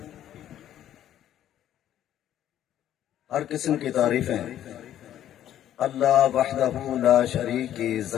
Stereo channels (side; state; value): right; quieter; 11.5 dB